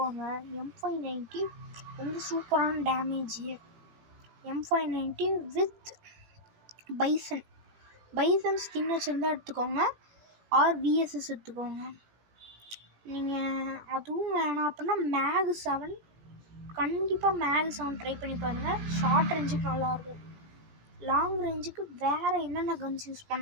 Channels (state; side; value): late; left; 18 ms